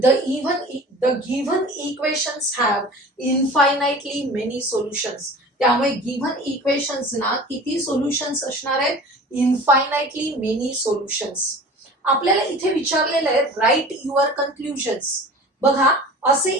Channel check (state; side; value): normal; both; correlation 0.40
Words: given equations have infinitely many solutions. त्यामुळे गिव्हन इक्वेशन्स ना किती सोल्युशन्स असणार आहेत? Infinitely many solutions. आपल्याला इथे विचारलेलं आहे राईट युअर कन्क्लुजन्स. बघा, असे